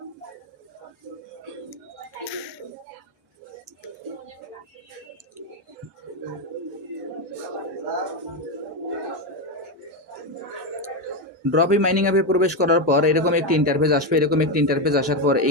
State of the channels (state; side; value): normal; both; correlation 0.10